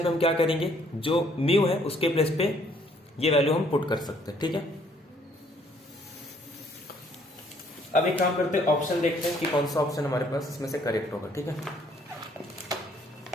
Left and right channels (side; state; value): both; normal; correlation 0.64